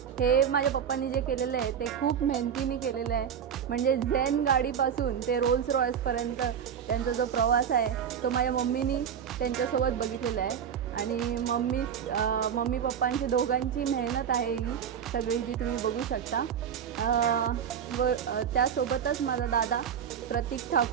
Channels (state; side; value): quieter; left; 8.1 dB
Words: हे माझ्या पप्पांनी जे केलेलं आहे ते खूप मेहनतीने केलेलं आहे. म्हणजे झेन गाडीपासून ते रोल्स रॉयसपर्यंत त्यांचा जो प्रवास आहे तो माझ्या मम्मीनी त्यांच्यासोबत बघितलेला आहे. आणि मम्मी पप्पांची दोघांची मेहनत आहे ही सगळी जी तुम्ही बघू शकता. व त्यासोबतच माझा दादा प्रतीक